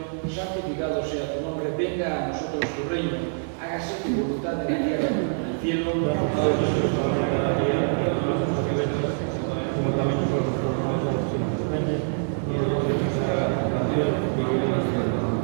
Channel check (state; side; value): silent; left; digital silence